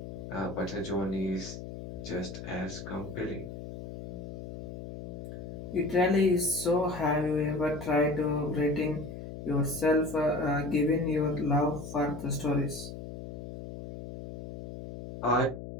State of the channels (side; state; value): left; noise; hum, 10 dB below the sound